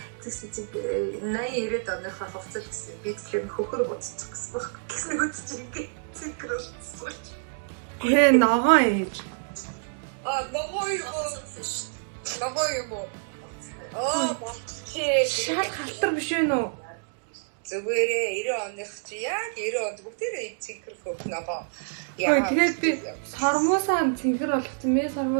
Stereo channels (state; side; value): silent; left; digital silence